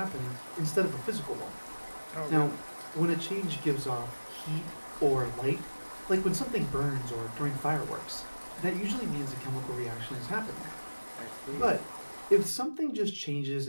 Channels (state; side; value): inverted; both; correlation -1.00